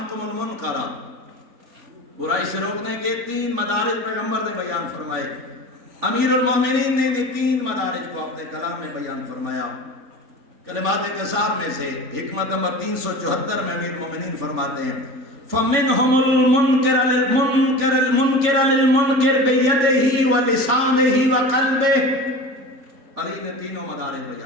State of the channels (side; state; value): left; late; 3.4 ms